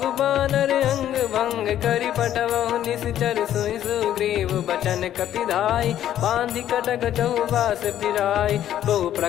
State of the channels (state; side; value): quieter; right; 11.4 dB